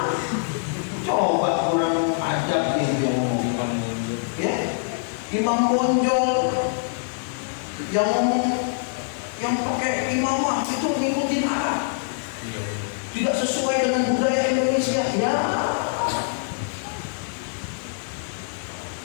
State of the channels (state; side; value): silent; right; 59 dB below the other